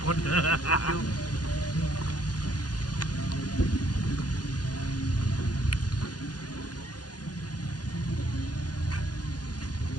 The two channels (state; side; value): late; right; 0.69 ms